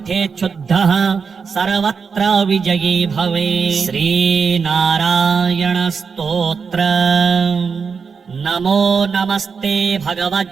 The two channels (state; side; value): quieter; left; 5.7 dB